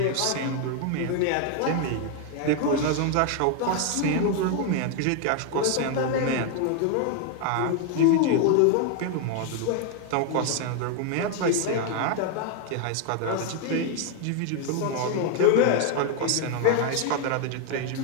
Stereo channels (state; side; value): different; both; correlation 0.01